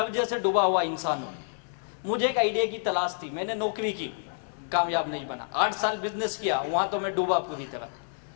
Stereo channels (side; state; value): right; silent; 59 dB below the other